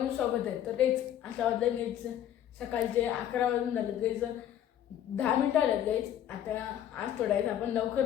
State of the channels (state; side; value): quieter; right; 10.9 dB